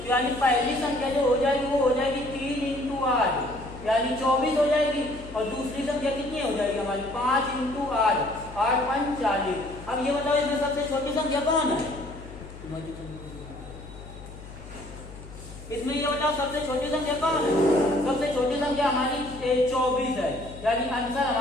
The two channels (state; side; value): noise; left; hum, 15 dB below the sound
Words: यानी पहली संख्या जो हो जाएगी वो हो जाएगी 3 × 8, यानी 24 हो जाएगी, और दूसरी संख्या कितनी हो जाएगी हमारी 5 × 8, 8 × 5 40। अब ये बताओ इसमें सबसे छोटी संख्या कौन है, इसमें ये बताओ सबसे छोटी संख्या कौन है। सबसे छोटी संख्या हमारी 24 है, यानी आंसर